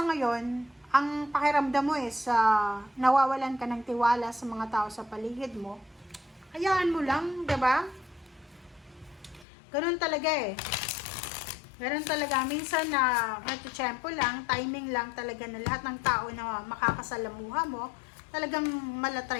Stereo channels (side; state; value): right; drops out; at 9.5 s